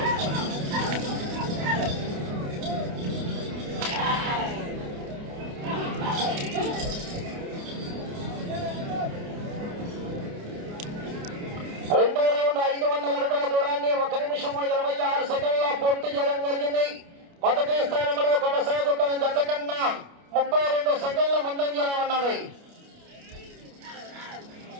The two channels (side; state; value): left; late; 29 ms